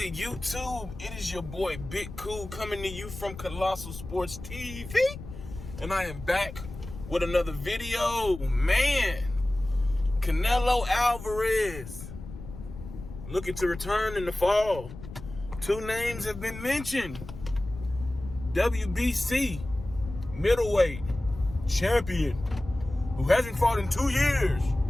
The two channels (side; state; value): left; noise; rumble, 12 dB below the sound